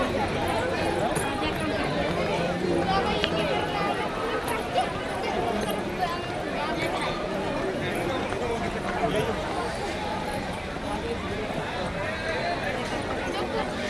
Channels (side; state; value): both; identical; correlation 1.00